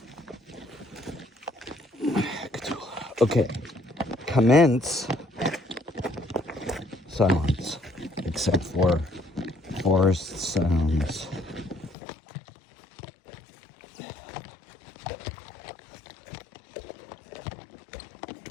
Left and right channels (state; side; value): drops out; right; at 12.0 s